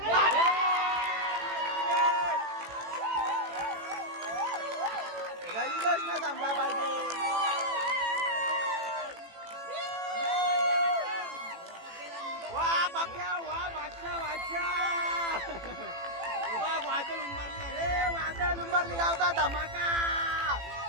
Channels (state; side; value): late; left; 18 ms